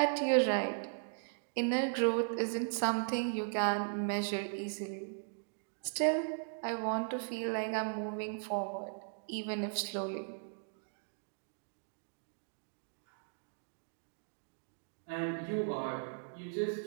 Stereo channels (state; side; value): silent; left; digital silence